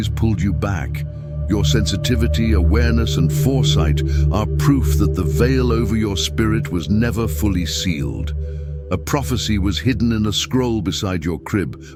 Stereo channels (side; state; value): both; identical; correlation 1.00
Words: pulled you back. Your sensitivity, awareness, and foresight are proof that the veil over your spirit was never fully sealed. A prophecy was hidden in a scroll beside your crib,